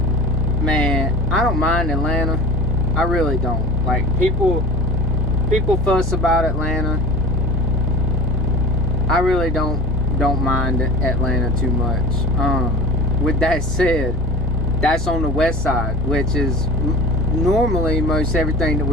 man, I don't mind Atlanta. I really don't. Like, people fuss about Atlanta. I really don't mind Atlanta too much. With that said, that's on the west side, which is normally most everything that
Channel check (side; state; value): both; normal; correlation 0.38